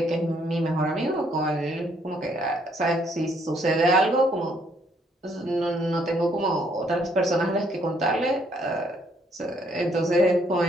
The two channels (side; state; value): both; normal; correlation 0.68